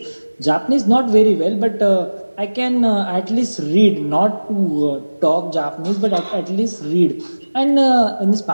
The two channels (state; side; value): inverted; both; correlation -1.00